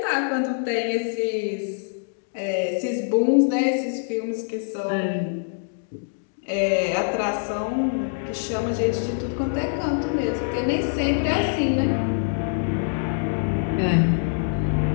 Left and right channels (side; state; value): right; silent; digital silence